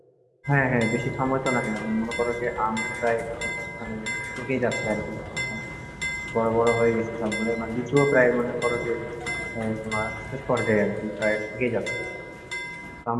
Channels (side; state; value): both; identical; correlation 1.00